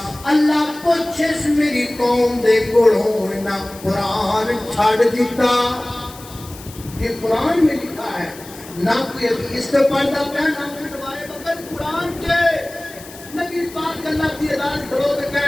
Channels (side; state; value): left; noise; hiss, 18 dB below the sound